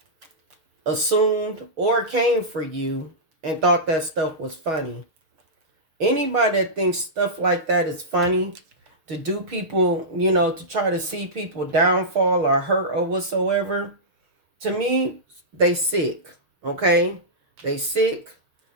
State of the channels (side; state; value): left; late; 6.5 ms